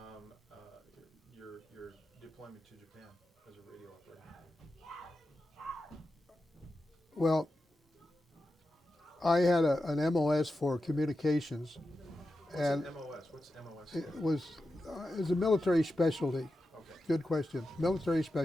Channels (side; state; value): both; normal; correlation 0.91